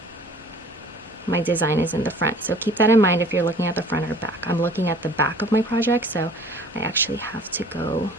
my design is in the front. So keep that in mind if you're looking at the front or back. I'm looking at the back of my project, so I actually have to go,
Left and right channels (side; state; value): both; normal; correlation 0.50